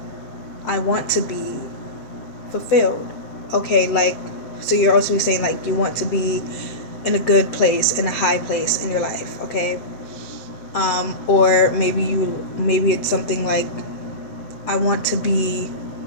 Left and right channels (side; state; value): right; late; 7.8 ms